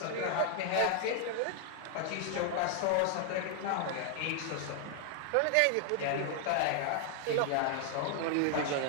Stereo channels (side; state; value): both; different; correlation 0.00